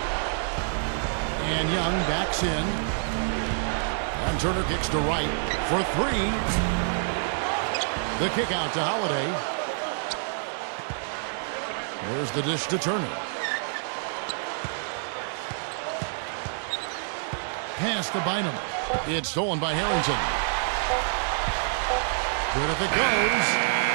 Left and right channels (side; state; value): left; silent; digital silence